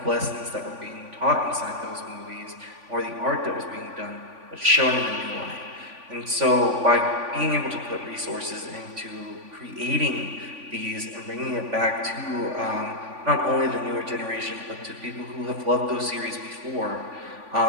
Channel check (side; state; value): left; late; 3.5 ms